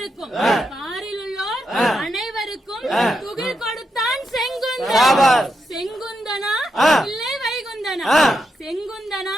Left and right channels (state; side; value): normal; both; correlation 0.84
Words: அனைவருக்கும் பாரில் உள்ளோர் அனைவருக்கும் துகில் கொடுத்தான் செங்குந்தன். செங்குந்தனா இல்லை வைகுந்தனா? செங்குந்தனா